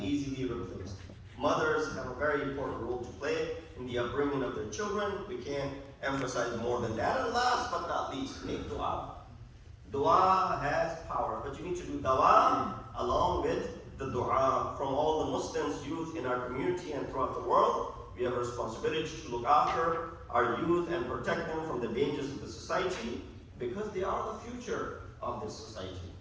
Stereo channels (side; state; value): both; identical; correlation 1.00